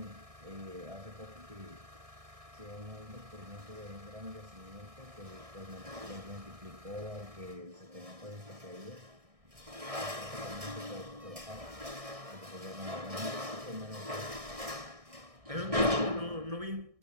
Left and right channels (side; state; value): left; late; 1.6 ms